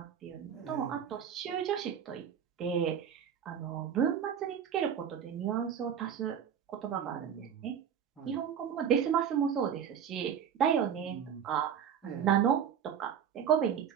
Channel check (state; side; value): quieter; left; 8.4 dB